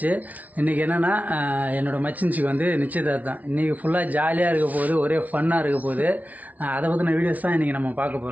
இன்றைக்கி என்னென்னா என்னோடய மச்சின்சிக்கு வந்து நிச்சயதார்த்தம். இன்றைக்கி ஃபுல்லாக ஜாலியாக இருக்க போகுது, ஒரே ஃபன்னாக இருக்க போகுது. அதை பற்றின வீடியோஸ் தான் இன்றைக்கி நம்ம பார்க்க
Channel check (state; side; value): late; left; 0.072 ms